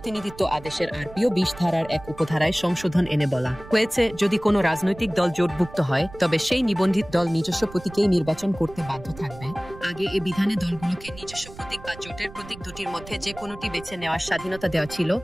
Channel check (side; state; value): right; noise; rumble, 17 dB below the sound